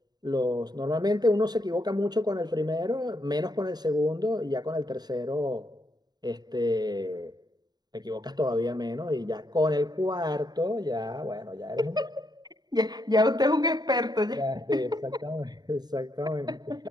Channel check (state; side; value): late; left; 0.20 ms